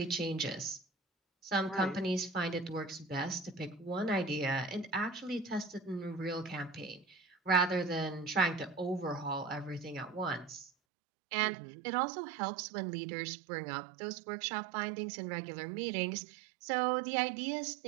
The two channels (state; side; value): drops out; left; at 10.7 s